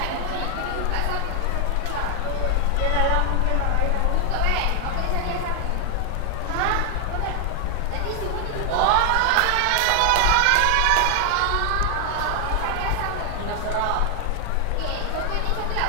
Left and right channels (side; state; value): both; different; correlation 0.00